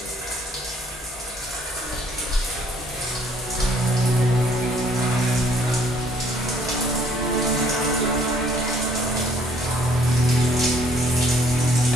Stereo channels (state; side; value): normal; both; correlation 0.62